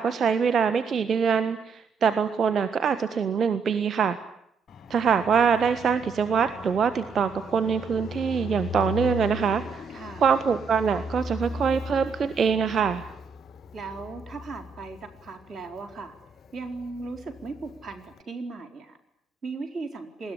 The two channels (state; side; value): quieter; left; 5.6 dB